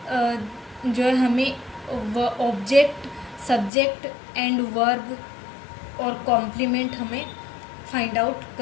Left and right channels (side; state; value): right; drops out; at 3.7 s